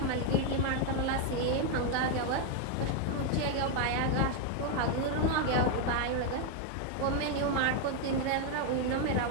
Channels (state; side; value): different; both; correlation 0.01